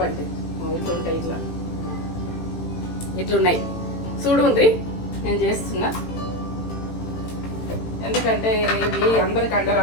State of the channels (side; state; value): right; late; 18 ms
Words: అంటే ఇట్లా ఉంటాయి, ఇట్లున్నాయి చూడుండ్రి. నేను చేస్తున్నా, ఎందుకంటే ఇవి అందరికి